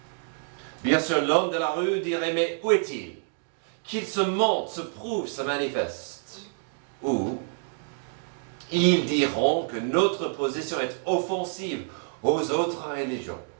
Bien sûr, l'homme de la rue dirait, mais où est-il? Qu'il se montre, se prouve, se manifeste. Ou ils diront que notre position est offensive aux autres religions.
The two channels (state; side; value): silent; left; digital silence